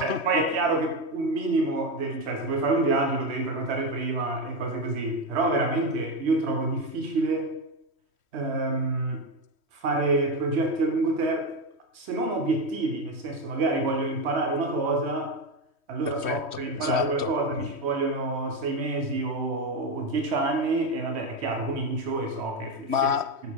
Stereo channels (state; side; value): late; left; 3.1 ms